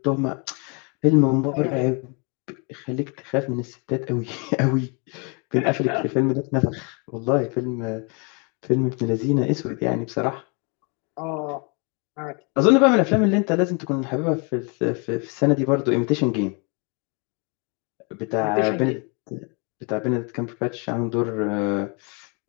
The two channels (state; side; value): quieter; right; 33.8 dB